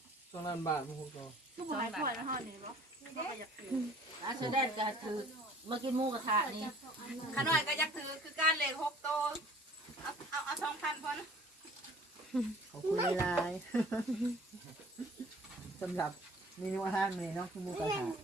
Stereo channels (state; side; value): normal; both; correlation 0.51